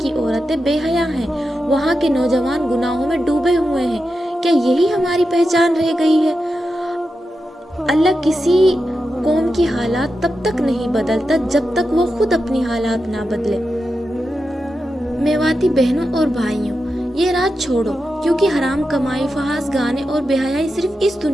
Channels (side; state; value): both; normal; correlation 0.89